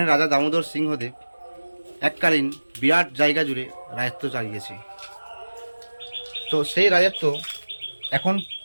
রাজা দামোদর সিংহদেব এককালীন বিরাট জায়গা জুড়ে রাজত্ব চালিয়েছে। তো সেই রাজত্ব এখন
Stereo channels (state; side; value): inverted; both; correlation -1.00